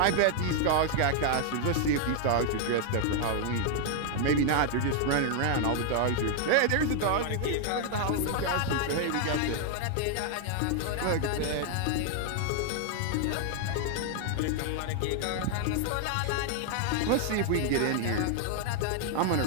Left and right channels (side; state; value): both; different; correlation 0.00